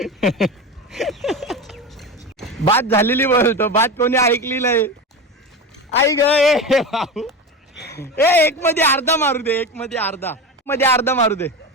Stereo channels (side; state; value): both; normal; correlation 0.24